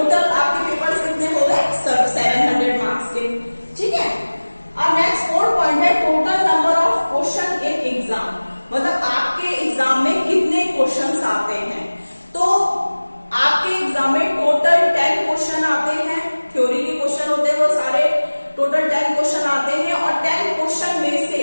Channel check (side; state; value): both; inverted; correlation -1.00